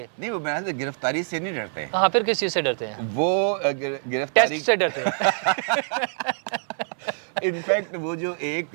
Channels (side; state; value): left; silent; 60 dB below the other